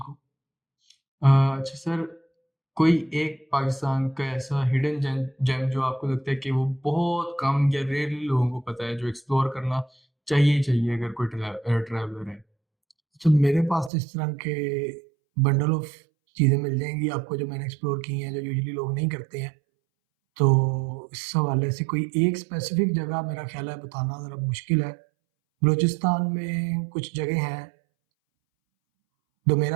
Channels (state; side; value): drops out; left; at 13.9 s